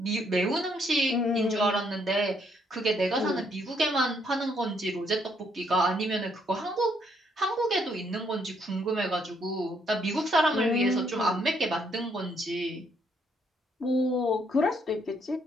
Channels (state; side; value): normal; both; correlation 0.71